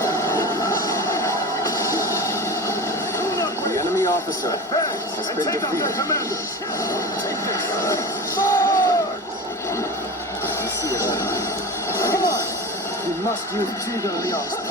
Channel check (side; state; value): both; normal; correlation 0.30